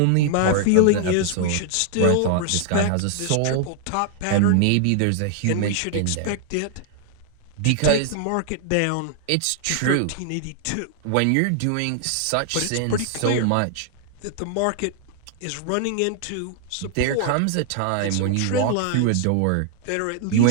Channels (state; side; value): different; both; correlation 0.00